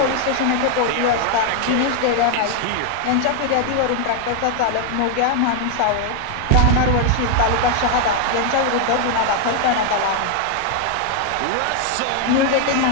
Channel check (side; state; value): both; different; correlation 0.00